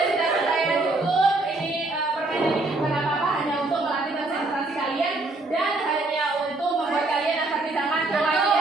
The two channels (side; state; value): left; quieter; 3.0 dB